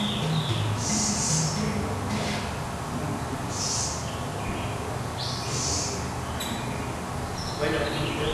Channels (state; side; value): identical; both; correlation 1.00